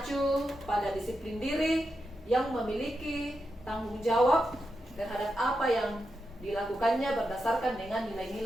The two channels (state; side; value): normal; both; correlation 0.87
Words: pada disiplin diri yang memiliki tanggung jawab terhadap apa yang dilakukannya berdasarkan dengan